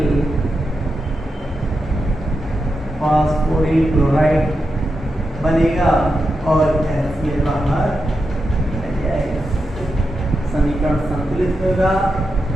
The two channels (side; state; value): both; normal; correlation 0.87